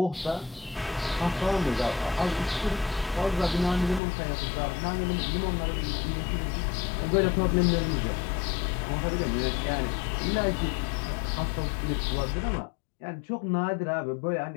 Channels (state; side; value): drops out; right; at 4.0 s